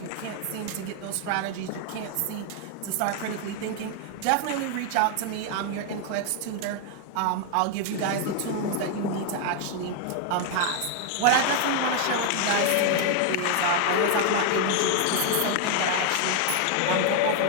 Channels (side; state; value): both; different; correlation 0.00